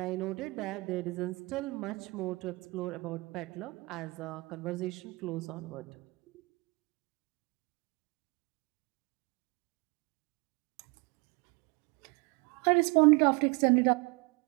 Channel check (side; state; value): left; quieter; 26.0 dB